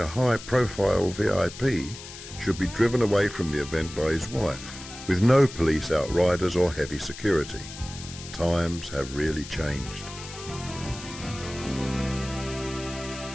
high-profile VIP should be driven away from the event by his wife, with no police outriders or heavy security. Times have really changed.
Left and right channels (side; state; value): left; noise; hiss, 13 dB below the sound